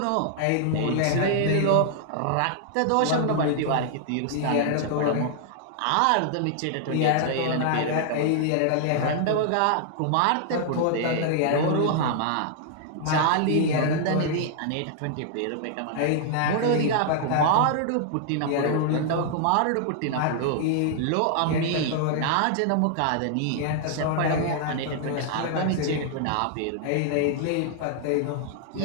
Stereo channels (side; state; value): both; different; correlation -0.01